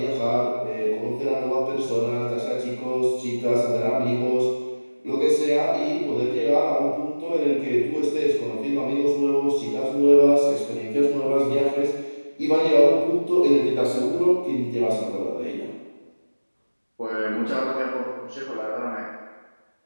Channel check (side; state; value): both; inverted; correlation -1.00